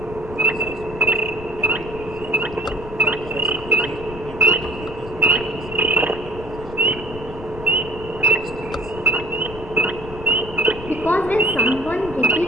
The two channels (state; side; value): noise; left; rumble, 13 dB below the sound